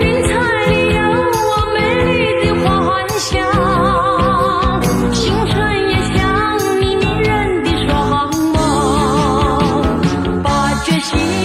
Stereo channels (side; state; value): both; identical; correlation 1.00